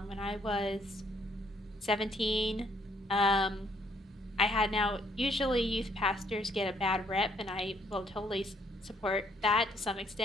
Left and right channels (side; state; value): both; normal; correlation 0.67